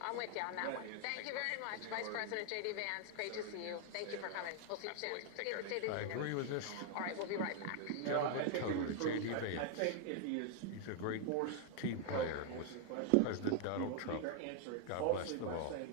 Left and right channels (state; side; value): different; both; correlation 0.00